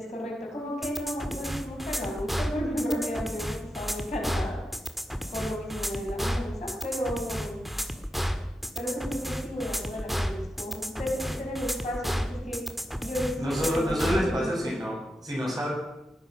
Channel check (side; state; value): both; normal; correlation 0.87